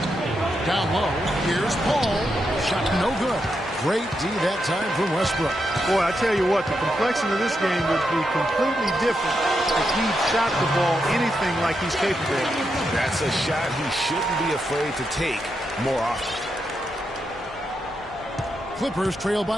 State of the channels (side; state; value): both; normal; correlation 0.84